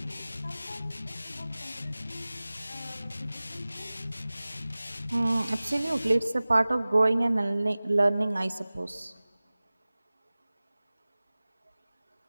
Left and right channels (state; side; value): inverted; both; correlation -0.98